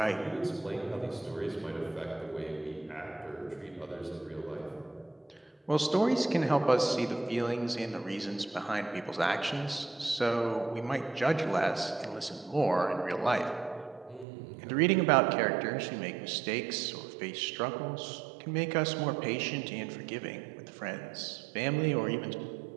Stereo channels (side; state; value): left; drops out; at 14.2 s